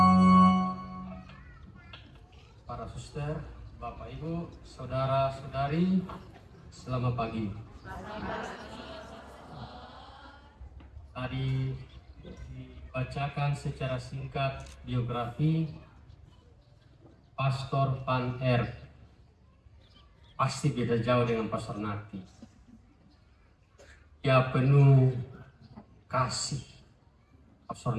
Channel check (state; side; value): identical; both; correlation 1.00